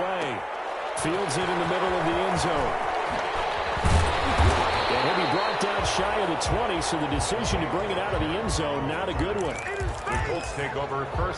Fields it in the middle of the end zone. And he'll be brought down shy of the 20, so the decision to bring it out of the end zone, not a good one. The Colts take over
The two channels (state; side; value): identical; both; correlation 1.00